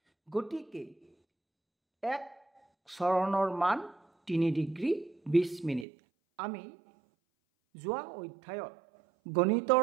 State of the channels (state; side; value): drops out; left; at 5.9 s